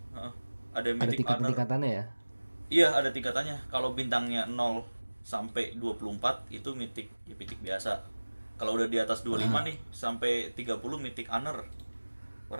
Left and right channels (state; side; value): inverted; both; correlation -1.00